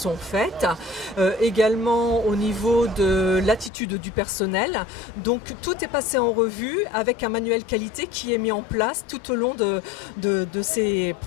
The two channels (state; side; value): drops out; right; at 3.7 s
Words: faites, également au niveau de l'attitude du personnel. Donc tout est passé en revue avec un manuel qualité qui est mis en place tout au long de ces